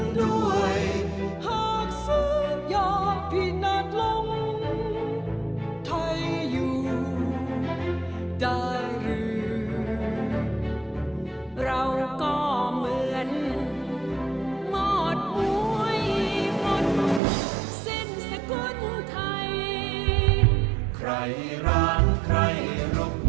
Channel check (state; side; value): drops out; left; at 17.2 s